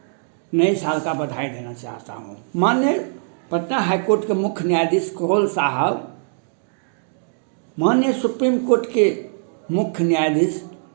नए साल का बधाई देना चाहता हूँ। माननीय पटना हाई कोर्ट के मुख्य न्यायाधीश कोहल साहब, माननीय सुप्रीम कोर्ट के मुख्य न्यायाधीश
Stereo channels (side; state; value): left; silent; digital silence